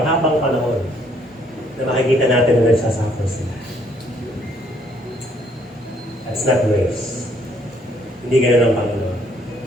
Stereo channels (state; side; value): normal; both; correlation 0.66